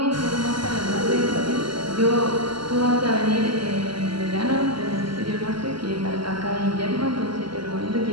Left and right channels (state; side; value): late; left; 0.73 ms